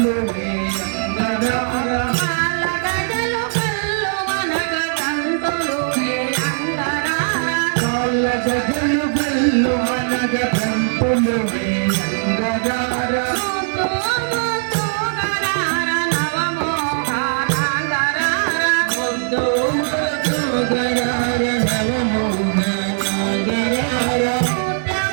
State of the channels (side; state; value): left; silent; 56 dB below the other